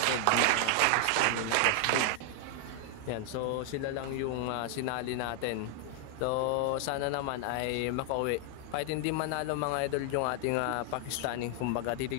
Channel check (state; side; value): different; both; correlation 0.00